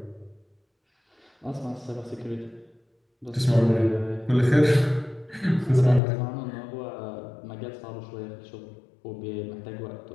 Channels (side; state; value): right; drops out; at 6.0 s